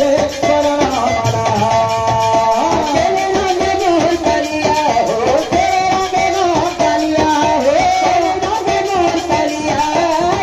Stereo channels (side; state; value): both; identical; correlation 1.00